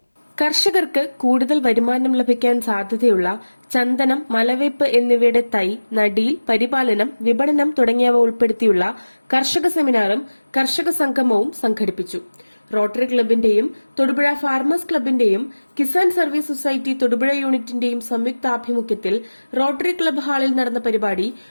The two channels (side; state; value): both; inverted; correlation -1.00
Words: കർഷകർക്ക് കൂടുതൽ വരുമാനം ലഭിക്കാൻ സാധ്യതയുള്ള ചന്ദനം, മലവേപ്പ് എന്നിവയുടെ തൈ, നടീൽ, പരിപാലനം, വിപണനം തുടങ്ങിയവ ഉൾപ്പെടുത്തിയുള്ള കർഷക സെമിനാറും കർഷക സംഗമവും സംഘടിപ്പിച്ചു. റോട്ടറി ക്ലബിന്റെയും തൊടുപുഴ ഫാർമേഴ്സ് ക്ലബിന്റെയും കിസാൻ സർവീസ് സൊസൈറ്റി തൊടുപുഴ യൂണിറ്റിന്റെയും സംയുക്താഭിമുഖ്യത്തിൽ റോട്ടറി ക്ലബ് ഹാളിൽ നടന്ന പരിപാടി